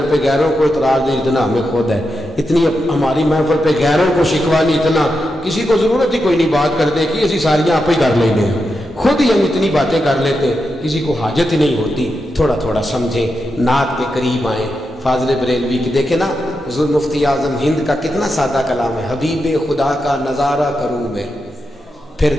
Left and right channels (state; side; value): normal; both; correlation 0.87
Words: پہ غیروں کو اعتراض نہیں اتنا ہمیں خود ہے، اتنی ہماری محفل پہ غیروں کو شکوہ نہیں اتنا کسی کو ضرورت ہی کوئی نہیں بات کرنے کی، اسی ساریاں آپ ہی کر لیں گے، خود ہی ہم اتنی باتیں کر لیتے ہیں، کسی کو حاجت ہی نہیں ہوتی۔ تھوڑا تھوڑا سمجھیں، نعت کے قریب آئیں۔ فاضل بریلوی کی دیکھیں نا، حضور مفتی اعظم ہند کا کتنا سادہ کلام ہے، حبیب خدا کا نظارہ کروں میں، پھر